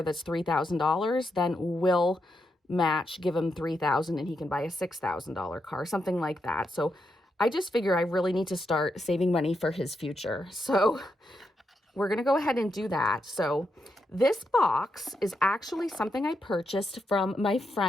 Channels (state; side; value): normal; both; correlation 0.83